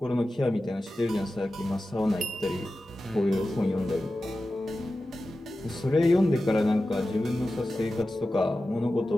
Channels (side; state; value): both; normal; correlation 0.94